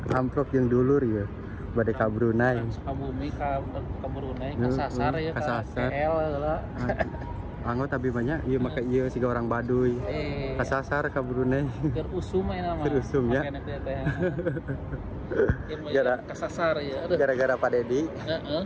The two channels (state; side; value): identical; both; correlation 1.00